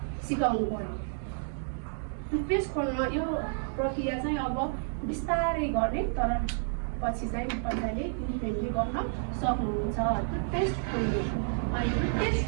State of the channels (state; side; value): silent; left; digital silence